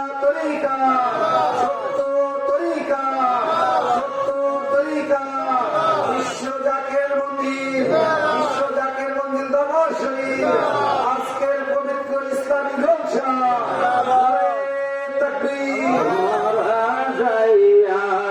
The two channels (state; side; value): identical; both; correlation 1.00